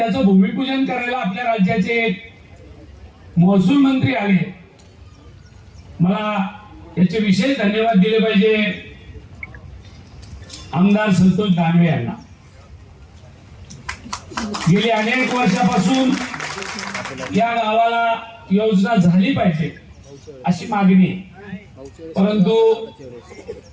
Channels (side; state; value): both; identical; correlation 1.00